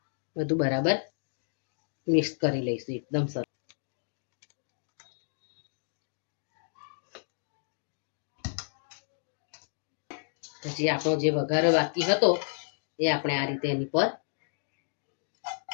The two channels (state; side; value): silent; right; digital silence